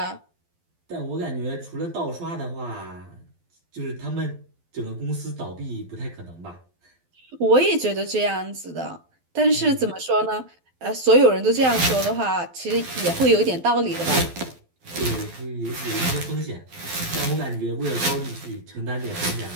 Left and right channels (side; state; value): left; late; 12 ms